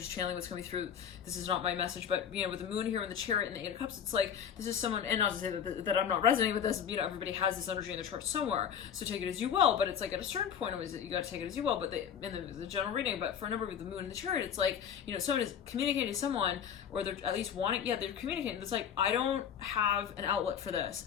channeling what's coming through. This is not my message, but, you know, with the moon here and the chariot and the 8 of cups, it's like, this is someone, and not to say that I'm not resonating with this, you know, everybody has this energy in their chart somewhere, so take it as you will, but it's like, at a certain point, you got to take it as you will, but in the general reading, but for a number with the moon and the chariot, it's like, you know, someone is communicating to someone, or they're at least wanting, they're communicating, it's like, I don't have an outlet for this,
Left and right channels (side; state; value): right; quieter; 8.3 dB